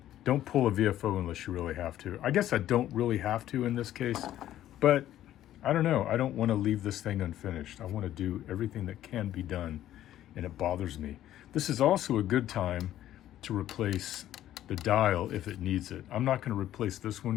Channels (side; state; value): right; quieter; 12.6 dB